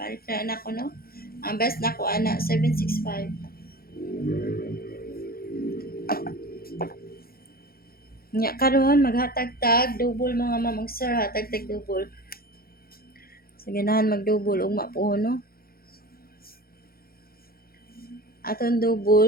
na anak ko no. Ang best na ko ana 765. Nya karon maghatag tag double mga mamong sir, hatag tag double. Sa ganahan mag-double ugma po no. Aton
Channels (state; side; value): late; right; 0.44 ms